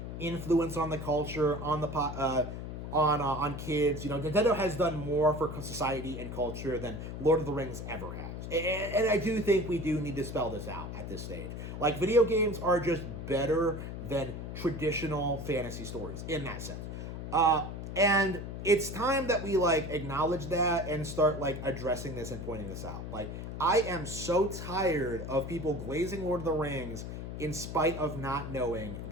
influence on the culture, on the on kids. You know, Nintendo has done more for society and culture than Lord of the Rings ever has. And I do think we do need to spell this out at this stage. Like, video games are just better than traditional fantasy stories in that sense. And it's time that we, like, acknowledge that and start, like, addressing this and pointing this out. Like, I am so tired of people glazing Lord of the Rings in spite of not knowing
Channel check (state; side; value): noise; left; hum, 7 dB below the sound